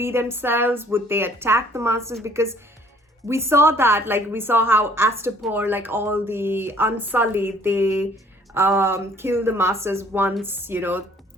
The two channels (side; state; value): both; normal; correlation 0.58